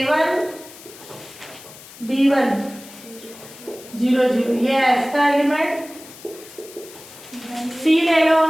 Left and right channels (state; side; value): noise; left; hiss, 18 dB below the sound